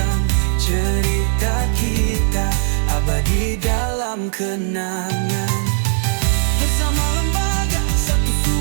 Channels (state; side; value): silent; left; digital silence